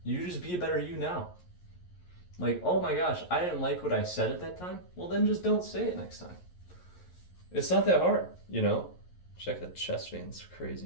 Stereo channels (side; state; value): right; late; 11 ms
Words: You just be a better you now. Oh my gosh, I didn't like what I said at that time. Well, then just don't say it next time. It's not that hard, Check that chest vein, it's